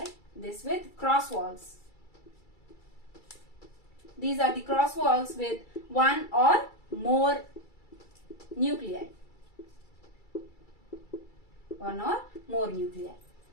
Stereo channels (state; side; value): late; right; 2.3 ms